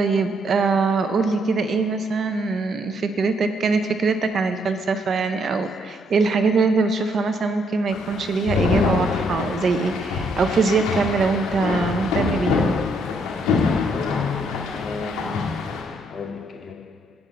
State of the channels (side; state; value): both; normal; correlation 0.72